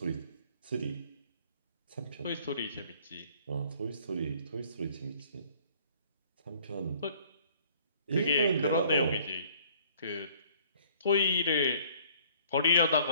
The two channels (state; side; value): inverted; both; correlation -0.56